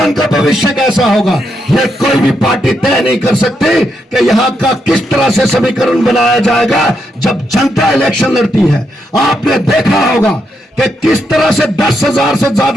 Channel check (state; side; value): normal; both; correlation 0.81